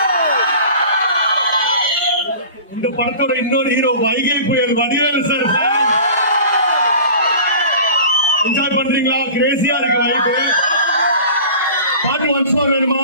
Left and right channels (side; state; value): both; inverted; correlation -0.39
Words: இந்த படத்தோட இன்னொரு ஹீரோ வைகை புயல் வடிவேலு சார். என்ஜாய் பண்றீங்களா? கிரேசியா இருக்கு வைகை. பாட்டு ஒன்ஸ் மோர் வேணுமா?